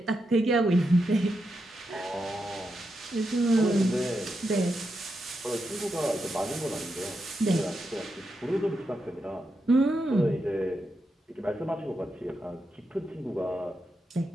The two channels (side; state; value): both; normal; correlation 0.85